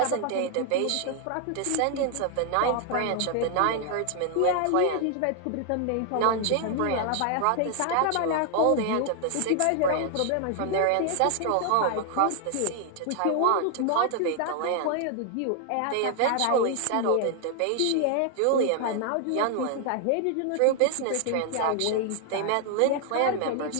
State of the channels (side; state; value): both; different; correlation 0.00